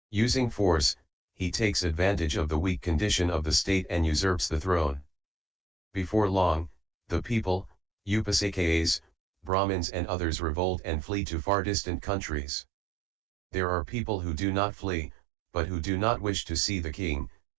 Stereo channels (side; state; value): left; drops out; at 9.5 s